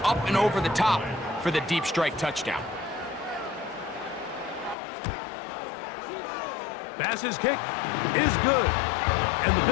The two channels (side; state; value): right; drops out; at 4.8 s